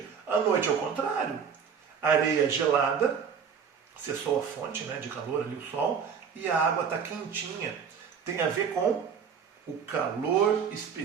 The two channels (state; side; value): quieter; left; 6.8 dB